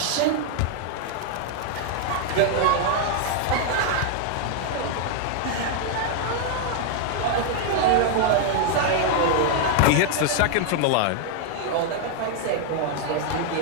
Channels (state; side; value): different; both; correlation 0.00